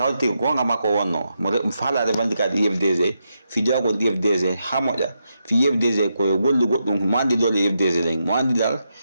hawti gonga makko wonno mo faala revendicat IFDG fi jawgol IFDG ha moƴƴa fi IFDG koye gollu goɗɗum mo andi dole IFDG ɗen mo andi dal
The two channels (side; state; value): both; inverted; correlation -0.84